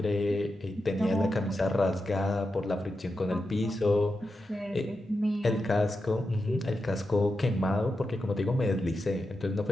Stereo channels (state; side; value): normal; both; correlation 0.89